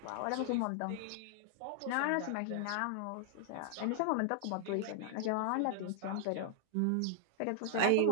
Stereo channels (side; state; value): both; different; correlation 0.00